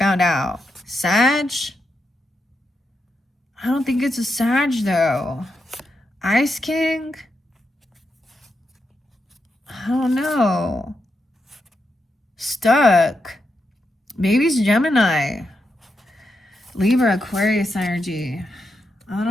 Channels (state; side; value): normal; both; correlation 0.84